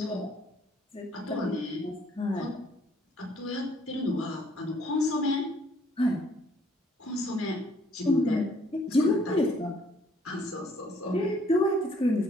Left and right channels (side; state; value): both; normal; correlation 0.63